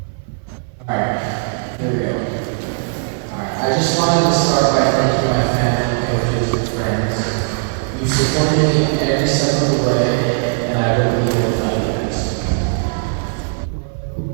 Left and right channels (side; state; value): left; silent; 56 dB below the other